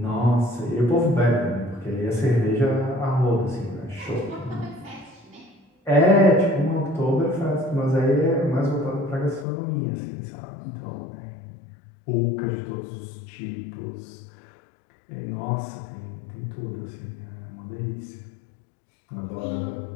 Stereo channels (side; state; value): right; drops out; at 9.5 s